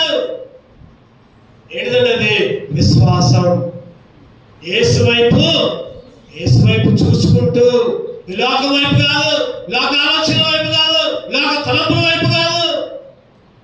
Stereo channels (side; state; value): both; identical; correlation 1.00